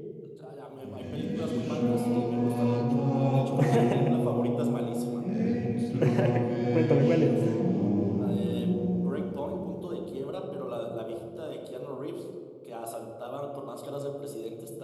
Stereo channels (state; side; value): identical; both; correlation 1.00